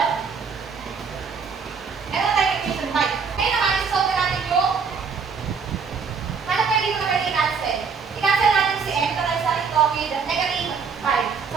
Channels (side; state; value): left; quieter; 5.7 dB